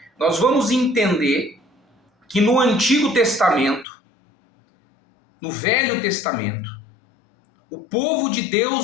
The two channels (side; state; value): right; drops out; at 3.9 s